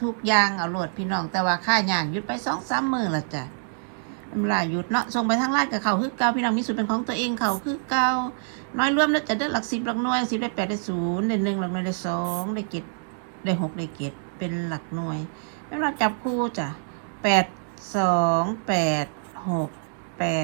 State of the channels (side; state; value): left; silent; digital silence